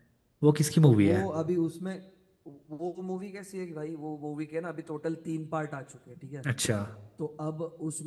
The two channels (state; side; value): identical; both; correlation 1.00